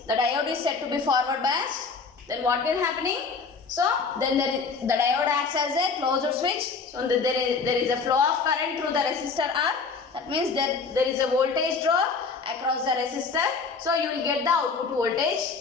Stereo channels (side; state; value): right; quieter; 4.8 dB